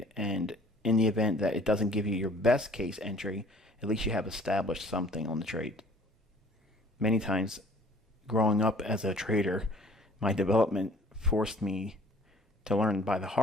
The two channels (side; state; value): both; normal; correlation 0.53